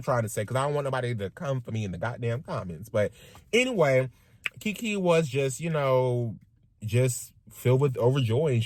trying to say, because I don't want nobody to come for me in the goddamn comments. But anyway, Keke was just, just filled with overjoy, and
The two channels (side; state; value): both; identical; correlation 1.00